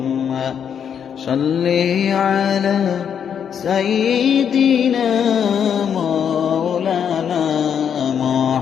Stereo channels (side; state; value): right; quieter; 8.0 dB